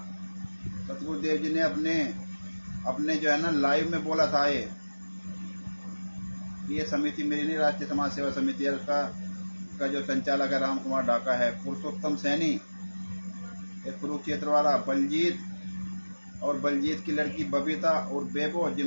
सतगुरुदेव जी ने अपने जो है ना लाइव में बोला था ये समिति मेरी नहीं, राष्ट्रीय समाज सेवा समिति है। उसका जो संचालक है राम कुमार ढाका है। पुरुषोत्तम सैनी, एक कुरुक्षेत्र वाला, बलजीत और बलजीत की लड़की बबीता और बेबो,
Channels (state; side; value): inverted; both; correlation -1.00